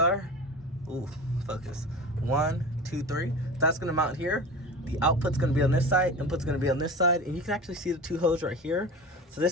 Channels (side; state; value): both; normal; correlation 0.33